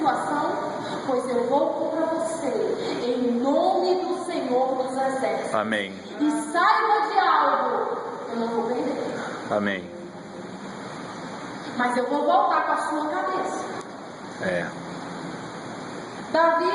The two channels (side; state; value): both; identical; correlation 1.00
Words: pois eu vou contra você. Em nome do Senhor dos Exércitos. Amém. E saiba de algo. Eu não vou perder. Amém. Mas eu vou voltar com a sua cabeça. Davi,